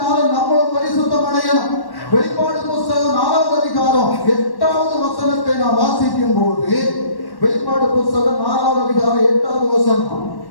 நம்மளும் பரிசுத்தம் அடையணும். வெளிப்பாடு புத்தகம் 4ஆம் அதிகாரம் 8வது வசனத்தை நாம் வாசிக்கும் போது, வெளிப்பாடு புத்தகம் 4ஆம் அதிகாரம் 8வது வசனம்.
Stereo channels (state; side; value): late; right; 1.1 ms